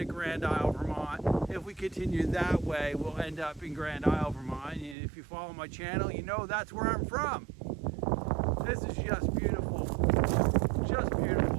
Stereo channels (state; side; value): drops out; left; at 5.0 s